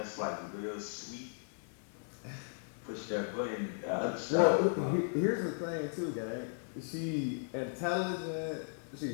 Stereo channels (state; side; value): silent; right; digital silence